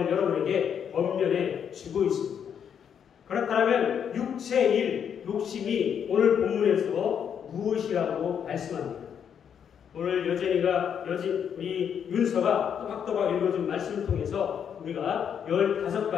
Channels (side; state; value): right; quieter; 8.1 dB